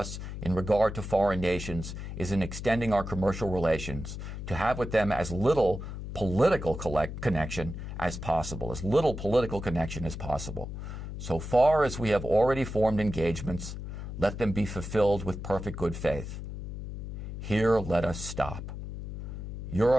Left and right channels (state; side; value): noise; left; hum, 8 dB below the sound